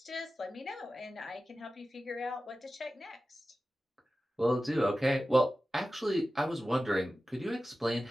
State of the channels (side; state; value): both; normal; correlation 0.95